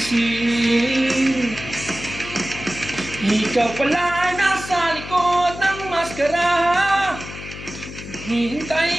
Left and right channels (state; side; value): noise; left; hum, 12 dB below the sound